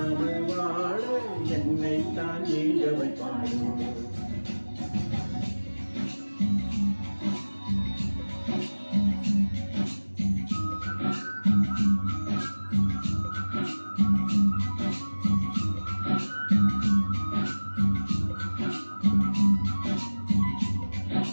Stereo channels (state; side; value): inverted; both; correlation -1.00